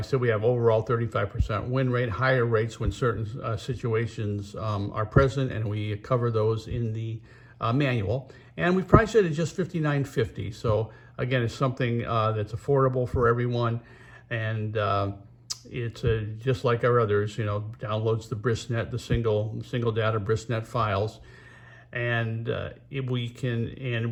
I said, we have overall 35% win rate, higher rates when certain situations are present, and we cover those in the manual. And we've priced it at just $59.50. So again, it's something that's affordable for everyone, and it's just like our others. Downloads the BrisNet, the single data BrisNet files, and we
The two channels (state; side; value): identical; both; correlation 1.00